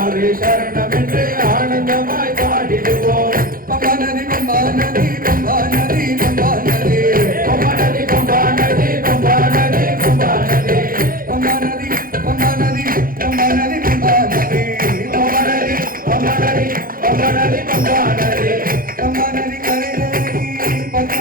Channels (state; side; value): late; left; 0.41 ms